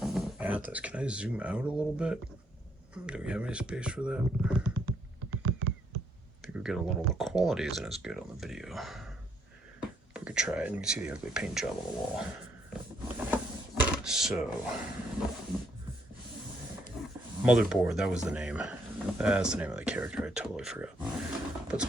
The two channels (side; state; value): both; normal; correlation 0.71